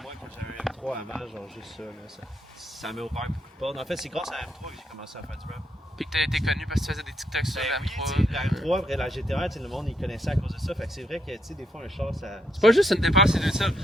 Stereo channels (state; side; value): normal; both; correlation 0.76